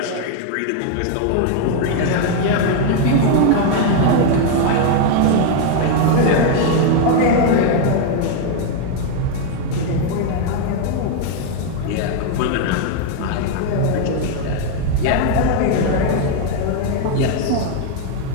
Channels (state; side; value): different; both; correlation 0.00